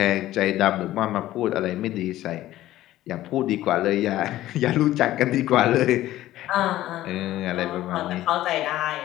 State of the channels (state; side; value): quieter; right; 14.7 dB